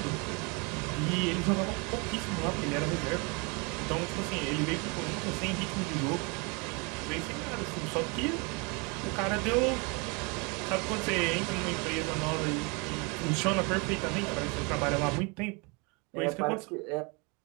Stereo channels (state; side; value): quieter; left; 30.5 dB